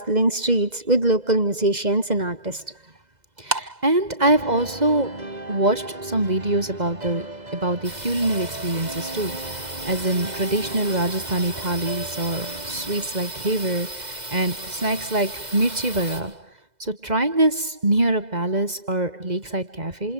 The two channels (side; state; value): left; late; 2.0 ms